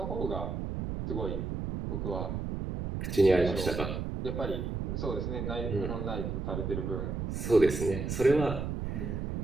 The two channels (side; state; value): right; noise; rumble, 3 dB below the sound